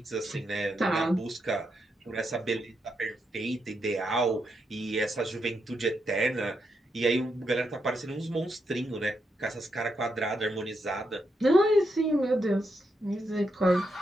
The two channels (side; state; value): both; normal; correlation 0.82